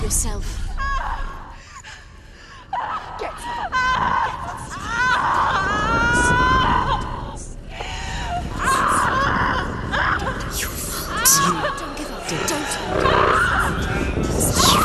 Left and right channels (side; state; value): both; identical; correlation 1.00